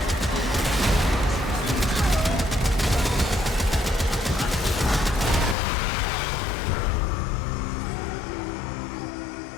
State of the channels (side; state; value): right; drops out; at 5.6 s